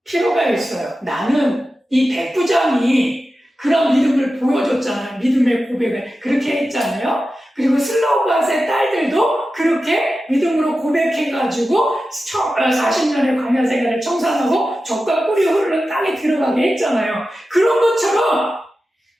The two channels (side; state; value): both; normal; correlation 0.93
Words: 필요가 있어요. 나는 이 백부장이 그런 믿음을 보여줬잖아요. 믿음의 고백을 그렇게 했잖아요. 그리고 슬로밧의 딸들도 그렇게 믿음으로 고백해가지고 40년의 광야 생활을 청산하고 젖과 꿀이 흐르는 땅에 들어가게 했잖아요. 그런 것처럼